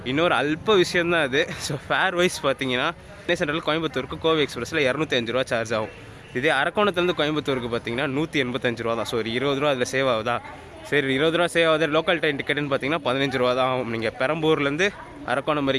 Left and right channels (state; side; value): identical; both; correlation 1.00